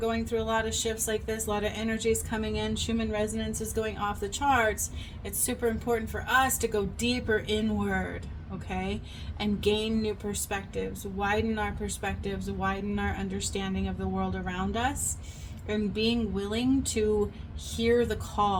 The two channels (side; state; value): both; identical; correlation 1.00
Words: through a lot of shifts like this, a lot of energies coming in, Schumann resonance is going off the charts, it's super important for us to go deeper inward, okay? And gain new perspectives, widen our perspectives, widen our understanding of the world around us, and being willing to hear the